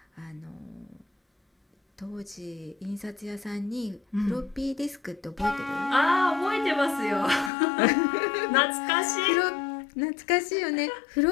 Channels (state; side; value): drops out; right; at 7.5 s